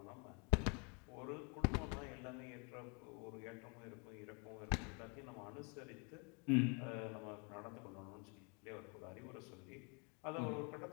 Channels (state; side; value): quieter; right; 34.2 dB